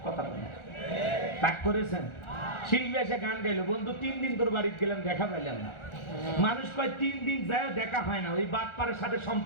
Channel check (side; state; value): right; late; 1.4 ms